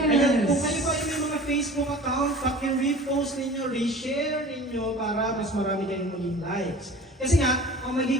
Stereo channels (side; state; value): both; normal; correlation 0.42